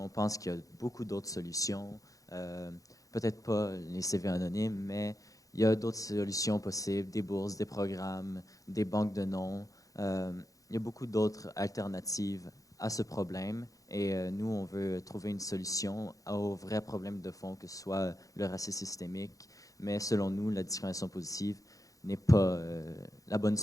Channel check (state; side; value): late; right; 0.17 ms